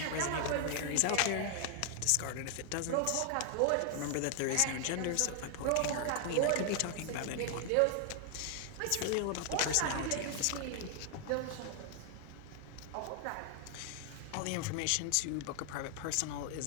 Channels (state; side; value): different; both; correlation 0.00